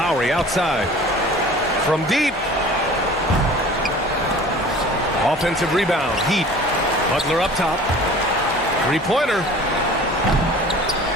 outside. From deep. Offensive rebound. Heat. Butler up top. Three-pointer.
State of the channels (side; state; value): both; normal; correlation 0.44